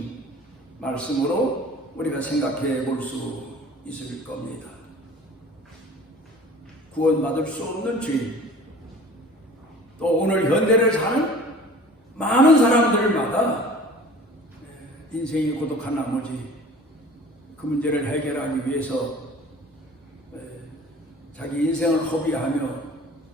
말씀으로 우리가 생각해 볼 수 있을 겁니다. 구원받을 수 없는 죄인, 또 오늘 현대를 사는 많은 사람들마다 인생이 고독한 나머지 그 문제를 해결하기 위해서 자기 인생을 허비하며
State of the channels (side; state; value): both; normal; correlation 0.45